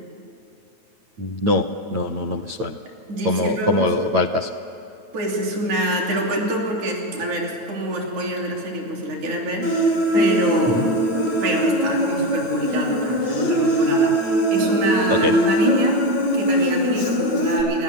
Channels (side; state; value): left; late; 9.2 ms